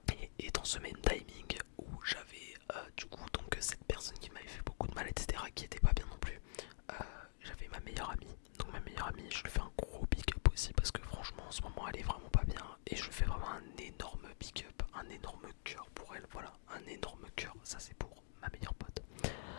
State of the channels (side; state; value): right; silent; digital silence